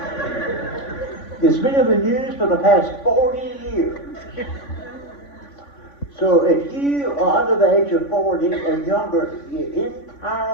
It's been in the news for the past 40 years. So if you are under the age of 40 or younger, your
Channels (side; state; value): right; late; 3.5 ms